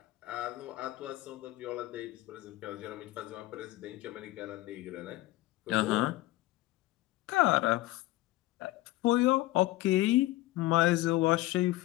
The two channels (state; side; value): quieter; right; 17.7 dB